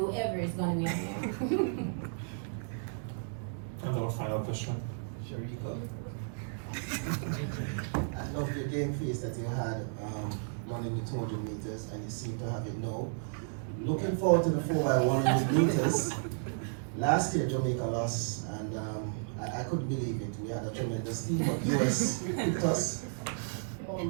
is gonna be on there. And our final question. Shericka. I love the game face that you had running the 200 meters, and you seem to have it now. Looking forward to the 4x100 meters. Last year, Jamaica lost, and I couldn't believe it. We had a tremendous team, but US picked us. How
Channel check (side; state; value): left; silent; digital silence